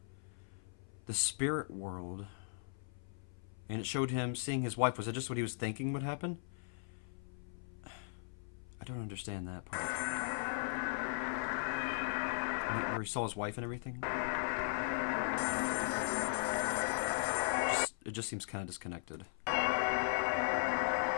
the spirit world. And it showed him seeing his wife. Was it just what he was thinking would happen? I don't understand that part. Where he saw his wife and everything? It just seems kind of disconnected.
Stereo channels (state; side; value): silent; right; 52 dB below the other